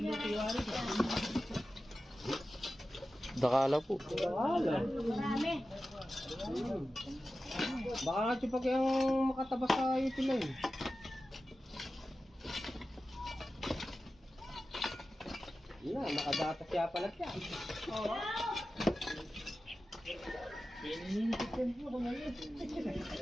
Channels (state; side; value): normal; both; correlation 0.94